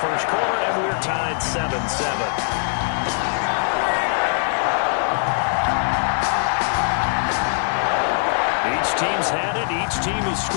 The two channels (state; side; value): silent; right; 60 dB below the other